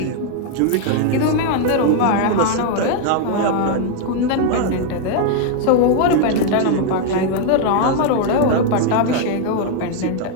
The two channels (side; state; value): both; different; correlation 0.00